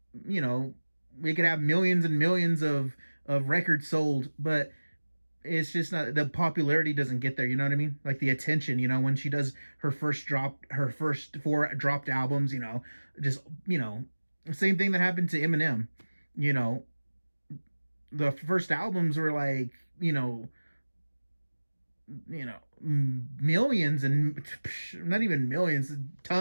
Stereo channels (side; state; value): both; inverted; correlation -1.00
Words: we could have millions and millions of records sold, but it's just not, the popularity doesn't get there. You know what I mean? Like the attention. When she does her first four dropped albums. Just same thing that happened to Eminem. You know, the first albums were like millions and not even millions,